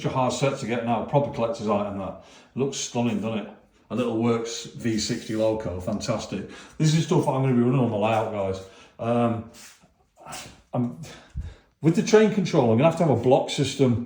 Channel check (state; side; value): identical; both; correlation 1.00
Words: a hard set to get now. Proper collector's item. That looks stunning, doesn't it? A little works V60 loco, fantastic. This is stuff I'm going to be running on the layout, guys. With the train control, I'm going to have a block